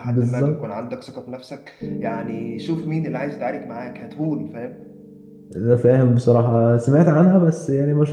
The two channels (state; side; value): identical; both; correlation 1.00